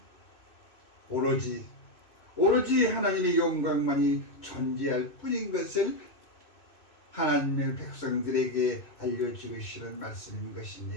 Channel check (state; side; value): late; right; 2.6 ms